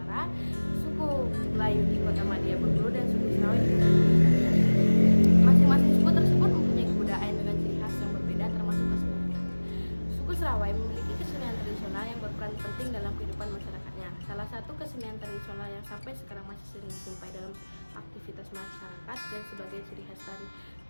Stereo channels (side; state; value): both; inverted; correlation -1.00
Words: suku Melayu di Kota Madia Bengkulu, dan suku Serawai di Bengkulu. Masing-masing suku tersebut mempunyai kebudayaan dengan ciri khas yang berbeda, termasuk keseniannya. Suku Serawai memiliki kesenian tradisional yang berperan penting dalam kehidupan masyarakatnya. Salah satu kesenian tradisional yang sampai sekarang masih sering dijumpai dalam aktivitas masyarakat dan sebagai ciri khas